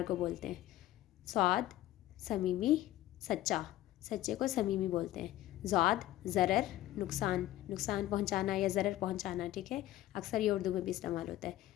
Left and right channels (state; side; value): quieter; right; 14.7 dB